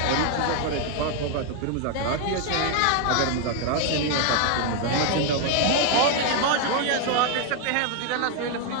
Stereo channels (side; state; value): both; different; correlation 0.00